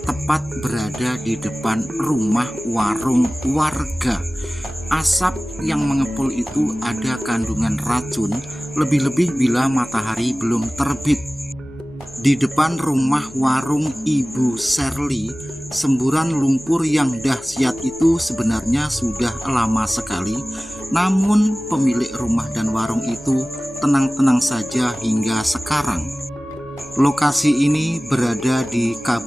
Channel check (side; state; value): left; noise; hum, 25 dB below the sound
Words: tepat berada di depan rumah warung warga. Asap yang mengepul itu ada kandungan racun, lebih-lebih bila matahari belum terbit. Di depan rumah warung Ibu Sherly, semburan lumpur yang dahsyat itu sebenarnya sudah lama sekali, namun pemilik rumah dan warung itu tenang-tenang saja hingga sekarang. Lokasi ini berada di